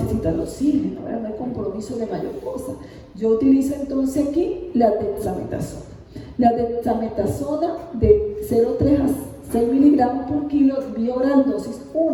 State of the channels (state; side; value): identical; both; correlation 1.00